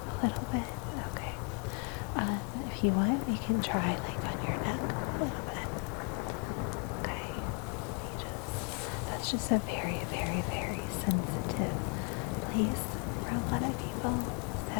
if you want, you can try like on your neck a little bit. Okay. That's just a very, very, very sensitive place for a lot of people.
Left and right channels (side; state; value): right; quieter; 35.4 dB